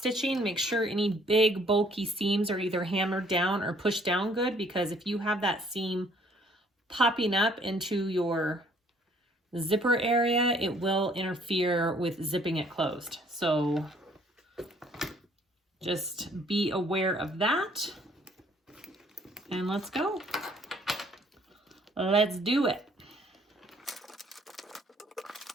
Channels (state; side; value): normal; both; correlation 0.61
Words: Make sure any big bulky seams are either hammered down or pushed down good, because if you have that seam popping up into your zipper area, it will interfere with zipping it closed. So just be aware of that. And let's go. Let's do it.